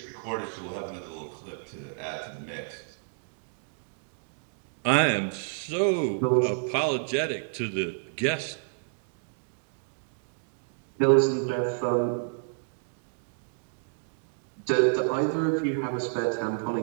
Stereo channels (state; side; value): silent; left; digital silence